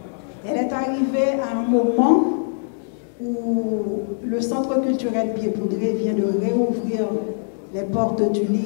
est arrivée à un moment où le Centre culturel Pied-Poudré vient de réouvrir les portes du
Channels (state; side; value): silent; right; 64 dB below the other